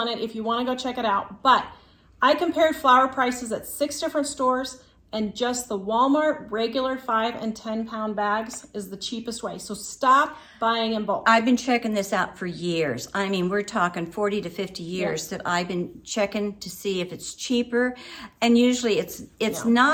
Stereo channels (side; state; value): both; identical; correlation 1.00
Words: it if you want to go check it out. But I compared flour prices at 6 different stores, and just the Walmart regular 5 and 10 pound bags is the cheapest way. So stop buying in bulk. I've been checking this out for years. I mean, we're talking 40 to 50 years that I've been checking to see if it's cheaper. And usually it's